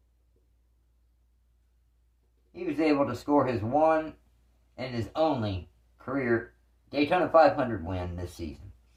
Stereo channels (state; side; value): identical; both; correlation 1.00